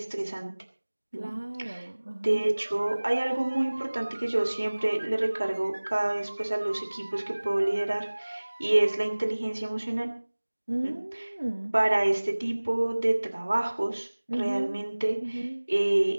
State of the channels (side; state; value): both; inverted; correlation -1.00